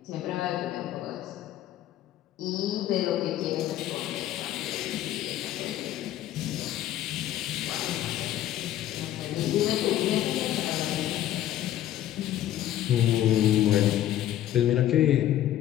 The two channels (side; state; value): right; quieter; 12.7 dB